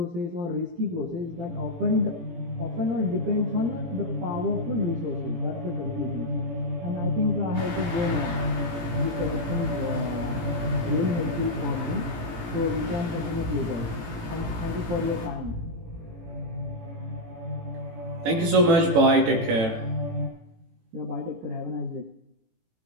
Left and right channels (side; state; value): left; late; 18 ms